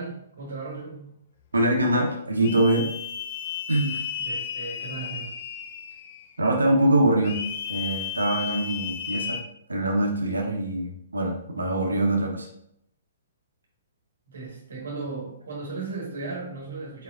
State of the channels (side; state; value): both; inverted; correlation -0.65